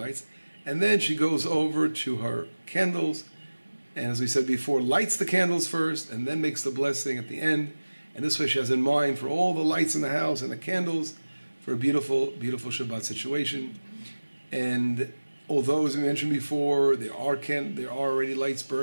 And then she goes over to her candles, and as we said before, lights the candles first, and then makes the blessing at the end. And this way she has in mind for all the lights in the house and the candles, for a beautiful, beautiful Shabbat situation. And although, as we mentioned before, there are already lights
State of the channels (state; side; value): inverted; both; correlation -1.00